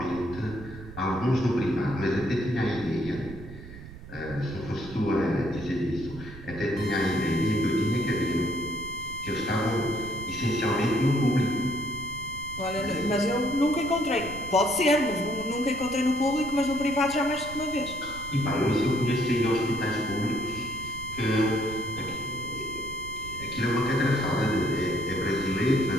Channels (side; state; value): right; noise; rumble, 14 dB below the sound